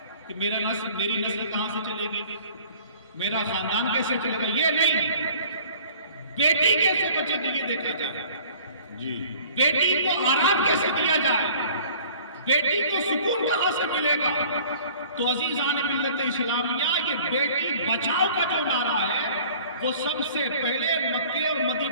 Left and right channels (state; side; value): inverted; both; correlation -0.49